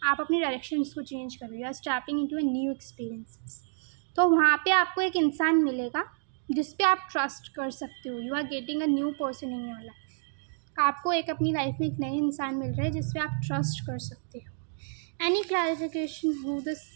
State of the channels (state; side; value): silent; left; digital silence